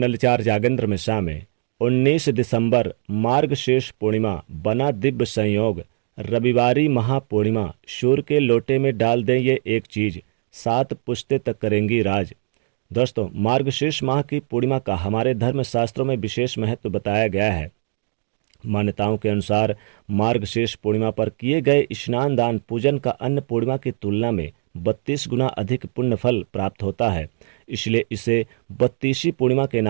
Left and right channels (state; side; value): silent; left; digital silence